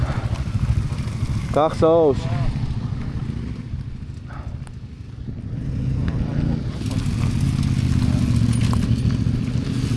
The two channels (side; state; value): both; identical; correlation 1.00